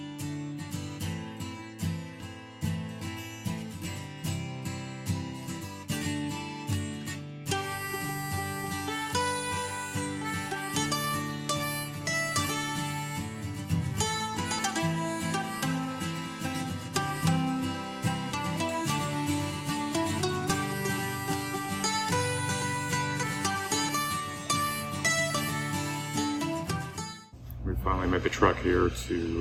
We finally made the trek here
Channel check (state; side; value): identical; both; correlation 1.00